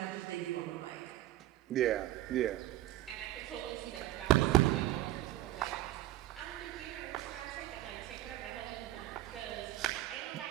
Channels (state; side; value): quieter; left; 15.2 dB